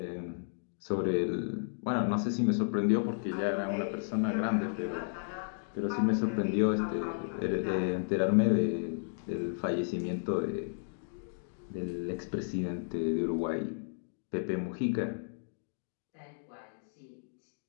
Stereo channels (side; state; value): right; silent; digital silence